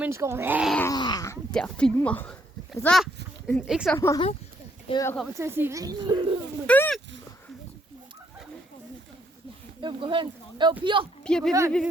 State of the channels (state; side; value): normal; both; correlation 0.70